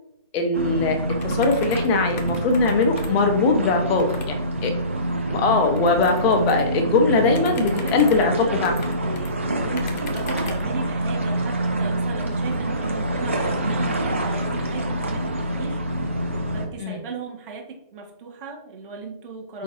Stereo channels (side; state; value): both; inverted; correlation -0.43